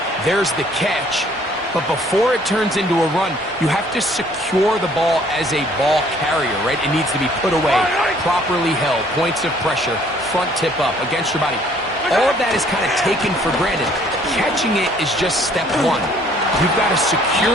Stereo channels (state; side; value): normal; both; correlation 0.60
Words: There's the catch, but before it turns into a run, you have to secure the ball as a ball carrier, right? It needs to be put away, properly held, points of pressure, front tip up against your body. All of that is kind of taken for granted. Catching it is just step 1. You've got to